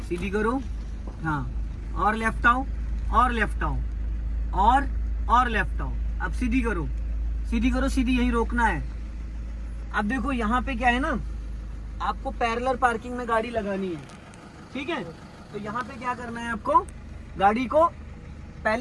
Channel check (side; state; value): both; identical; correlation 1.00